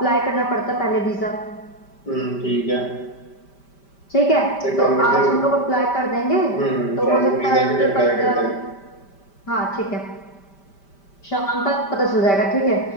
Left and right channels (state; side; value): late; right; 5.1 ms